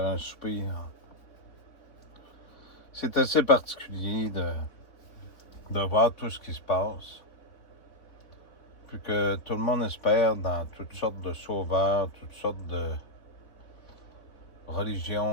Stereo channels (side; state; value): right; late; 3.5 ms